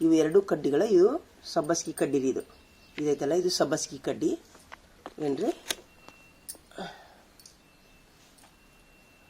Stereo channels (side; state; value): both; identical; correlation 1.00